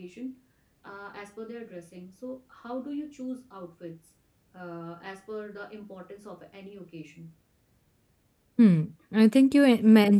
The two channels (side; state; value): both; identical; correlation 1.00